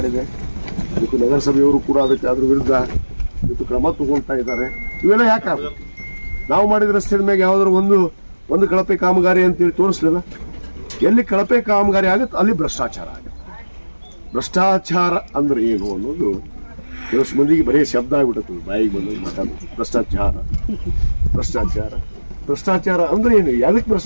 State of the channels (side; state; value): both; inverted; correlation -1.00